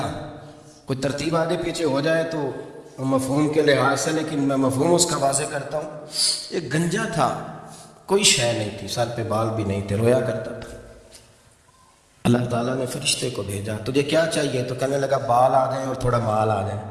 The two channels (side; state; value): both; identical; correlation 1.00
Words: کوئی ترتیب آگے پیچھے ہو جائے تو مفہوم کے لحاظ سے, لیکن میں مفہوم اس کا واضح کرتا ہوں. ایک گنجا تھا, کوئی شے نہیں تھی, سر پہ بال بھی نہیں تھے, رویا کرتا تھا. اللہ تعالیٰ نے فرشتے کو بھیجا, تجھے کیا چاہیے؟ تو کہنے لگا بال آ گئے اور تھوڑا مال آ جائے.